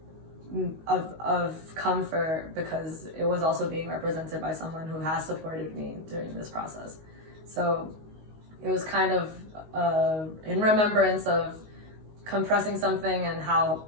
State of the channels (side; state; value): left; late; 19 ms